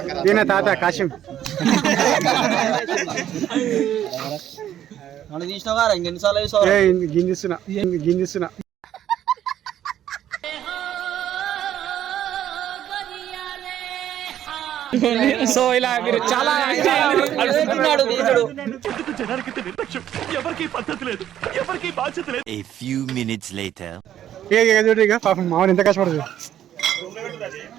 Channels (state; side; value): quieter; left; 11.2 dB